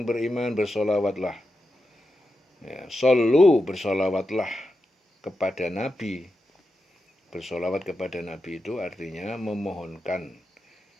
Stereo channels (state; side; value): normal; both; correlation 0.89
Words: beriman, bersolawatlah. Ya, sallu, bersolawatlah kepada Nabi. Bersolawat kepada Nabi itu artinya memohonkan,